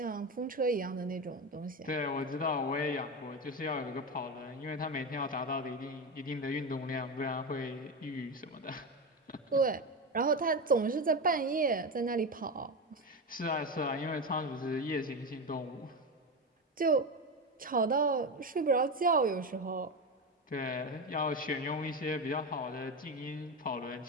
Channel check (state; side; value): normal; both; correlation 0.17